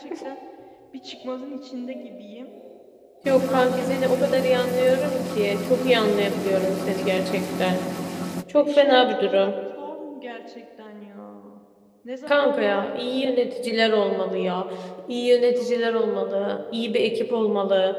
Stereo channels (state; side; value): identical; both; correlation 1.00